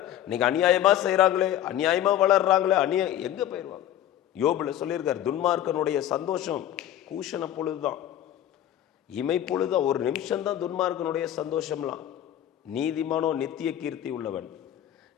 இன்னைக்கு அநியாயமாக செய்கிறாங்களே, அநியாயமாக வளர்றாங்களே, எங்கே போயிடுவாங்க? யோபுல சொல்லியிருக்கார், துன்மார்க்கனுடைய சந்தோஷம் கூஷண பொழுதுதான், இமை பொழுதுதான், ஒரு நிமிஷம்தான் துன்மார்க்கனுடைய சந்தோஷம்லாம். நீதிமானோ நித்திய கீர்த்தி உள்ளவன்.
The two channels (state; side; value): quieter; right; 11.7 dB